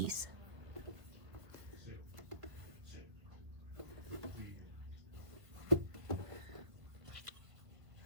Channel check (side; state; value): left; late; 1.7 ms